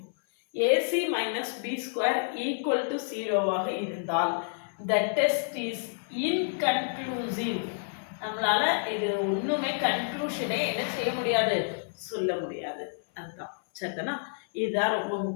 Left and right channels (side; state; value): right; silent; 57 dB below the other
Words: AC minus B square equal to 0 ஆக இருந்தால் the test is inconclusive. நம்மளால இது ஒண்ணுமே கன்க்ளூஷனே என்ன செய்ய முடியாது, சொல்ல முடியாது. அதுதான் சரிதானா? இதுதான் ரொம்ப